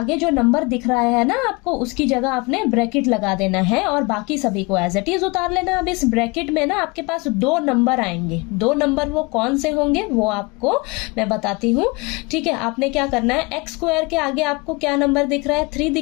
जो नंबर दिख रहा है ना आपको, उसकी जगह आपने ब्रैकेट लगा देना है और बाकी सभी को एज इट इज उतार लेना। अब इस ब्रैकेट में ना आपके पास 2 नंबर आएंगे। 2 नंबर वो कौन से होंगे वो आपको मैं बताती हूँ। ठीक है, आपने क्या करना है, एक्स स्क्वायर के आगे आपको क्या नंबर दिख रहा है, 3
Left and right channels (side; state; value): right; quieter; 26.6 dB